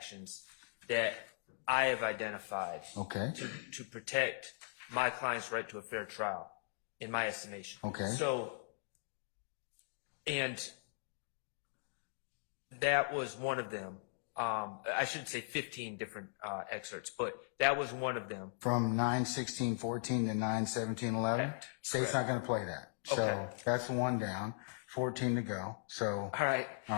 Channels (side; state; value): right; silent; digital silence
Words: that I have identified to protect my client's right to a fair trial, in my estimation. Okay. So, and that was one of them. I should say 15 different excerpts, but that was one of them. From 9:16:14 to 9:17:11? State's not going to play that. So that's one down, 14 to go. So. All right. All